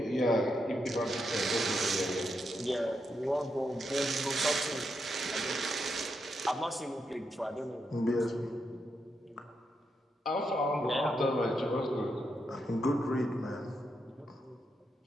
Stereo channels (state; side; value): normal; both; correlation 0.83